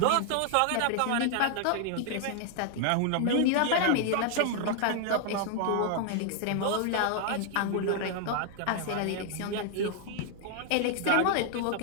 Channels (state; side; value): different; both; correlation 0.00